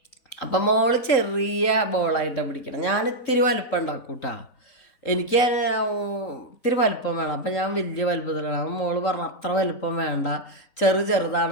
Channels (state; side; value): late; right; 3.8 ms